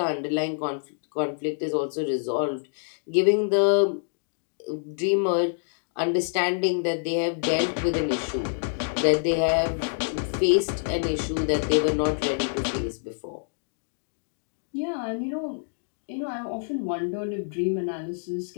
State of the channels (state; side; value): silent; right; digital silence